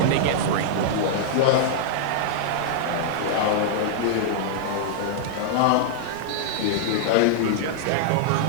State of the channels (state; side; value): different; both; correlation -0.01